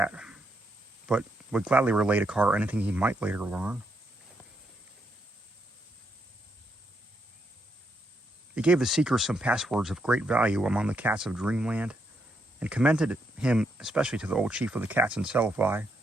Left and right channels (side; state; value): both; normal; correlation 0.78